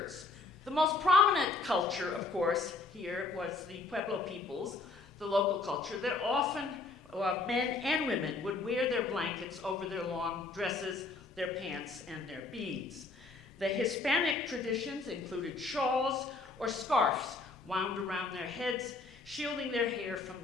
The most prominent culture, of course, here was the Pueblo peoples, the local culture, that often men and women would wear their blankets over their long dresses, their pants, and their beads. The Hispanic traditions included shawls or scarves wound around their heads, shielding their hair from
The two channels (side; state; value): right; quieter; 3.7 dB